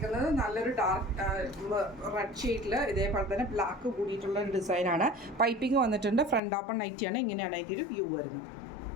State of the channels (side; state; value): right; drops out; at 6.4 s